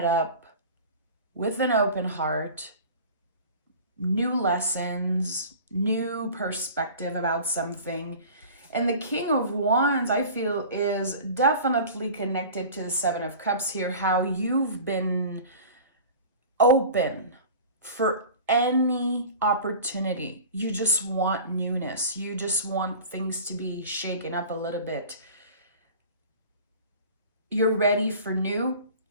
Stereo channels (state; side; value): inverted; both; correlation -0.39